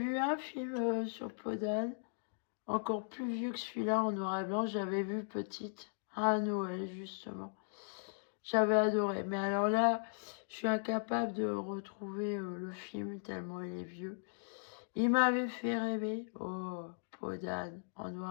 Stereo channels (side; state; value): right; silent; digital silence